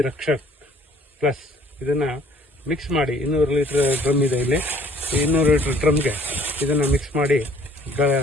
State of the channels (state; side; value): normal; both; correlation 0.58